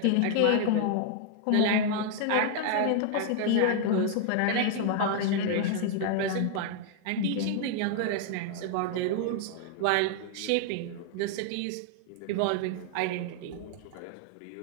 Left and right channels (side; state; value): both; different; correlation 0.00